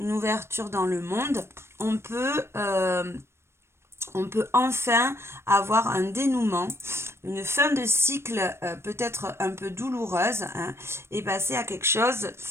dans le monde. On peut enfin avoir un dénouement, une fin de cycle peut-être un peu douloureuse, hein, et passer à quelque chose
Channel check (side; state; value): left; late; 0.12 ms